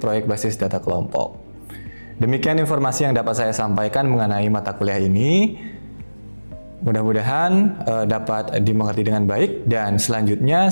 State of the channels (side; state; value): both; inverted; correlation -1.00